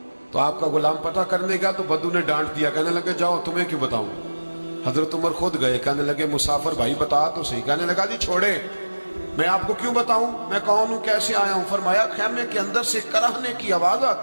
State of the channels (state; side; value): inverted; both; correlation -1.00